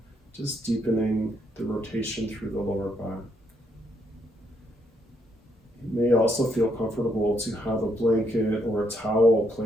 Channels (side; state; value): both; normal; correlation 0.74